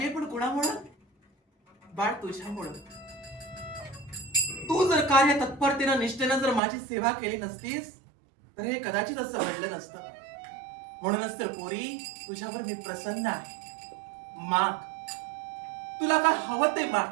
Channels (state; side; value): drops out; left; at 6.6 s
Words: पण कुणामुळं? बाळ, तुझ्यामुळं. तू जर कार्य तत्परतेनं निष्ठेनं जर माझी सेवा केली नसतीस तर हे कदाचित असं घडलं नसतं. म्हणूनच तर पोरी, तुझ्यावर मी प्रसन्न आहे. माग, तुला काय हवं ते